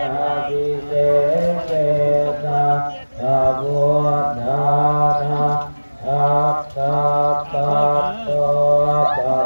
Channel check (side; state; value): both; inverted; correlation -1.00